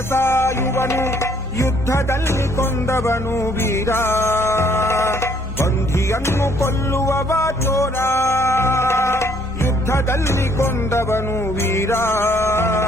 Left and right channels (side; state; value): both; normal; correlation 0.64